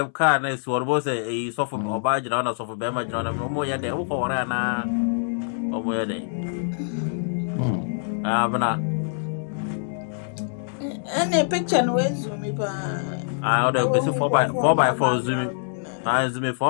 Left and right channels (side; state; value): right; silent; 62 dB below the other